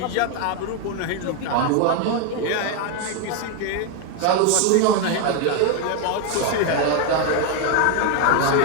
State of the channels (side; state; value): both; different; correlation 0.01